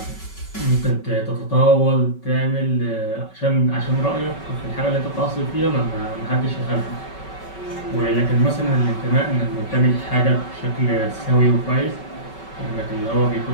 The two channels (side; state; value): right; late; 5.3 ms